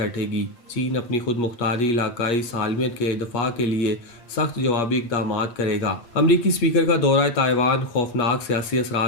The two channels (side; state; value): right; late; 8.4 ms